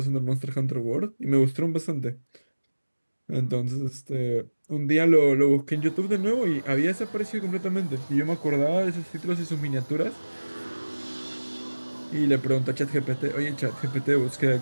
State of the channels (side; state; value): both; inverted; correlation -1.00